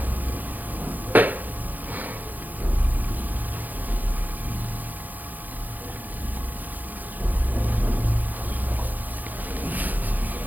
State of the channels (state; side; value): late; left; 0.083 ms